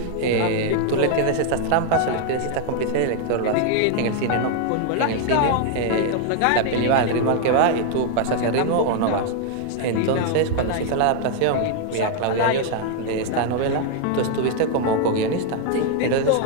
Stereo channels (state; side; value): different; both; correlation 0.00